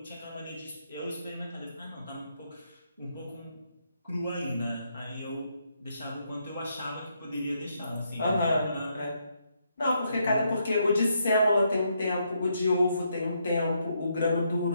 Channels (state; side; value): inverted; both; correlation -0.77